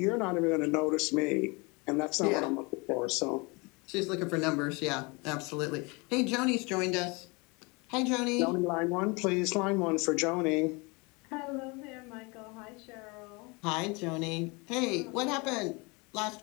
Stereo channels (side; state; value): right; quieter; 28.0 dB